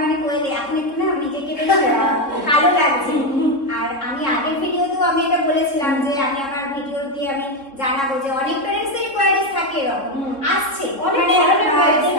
মানে কোয়েলে এখন একটু না নিজেকে বেশ ভালো লাগছে। আর আমি আগের ভিডিওতেও আমি এটা বলেছিলাম যে আমি আমার ভিডিও দিয়ে আমি জানাবো যে অনেক প্যারেন্টসদের রিকোয়ারিজ থাকে এরকম আসছে, মানে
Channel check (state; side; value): late; right; 3.7 ms